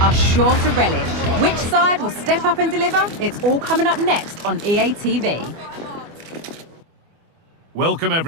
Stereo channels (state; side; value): late; left; 24 ms